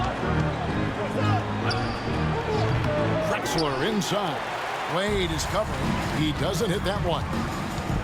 Drexler inside. Wade is covering. He doesn't hit that one.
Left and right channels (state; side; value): identical; both; correlation 1.00